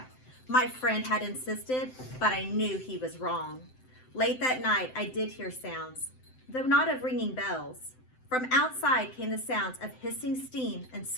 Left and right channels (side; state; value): right; late; 7.8 ms